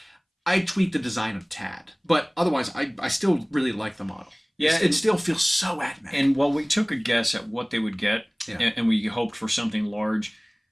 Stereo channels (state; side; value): identical; both; correlation 1.00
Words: I tweak the design of Tad, but otherwise I still really like the model. Yeah, it still feels so AdMech. And while we took a guess at what they would get, and we hoped for something large,